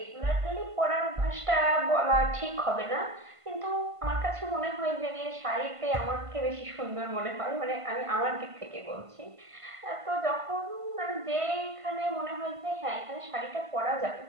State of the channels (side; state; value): left; late; 1.5 ms